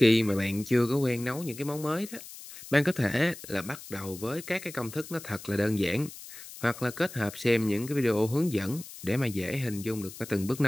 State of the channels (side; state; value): left; noise; hiss, 15 dB below the sound